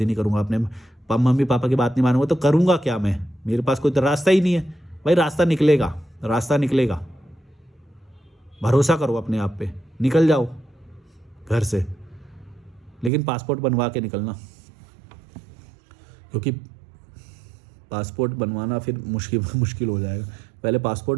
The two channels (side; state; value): left; drops out; at 13.1 s